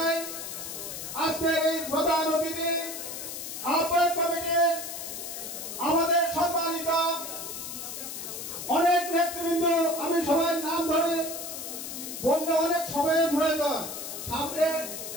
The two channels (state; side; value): noise; left; hiss, 7 dB below the sound